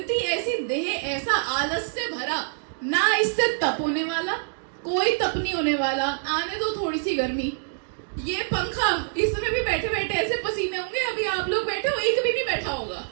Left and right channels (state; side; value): silent; left; digital silence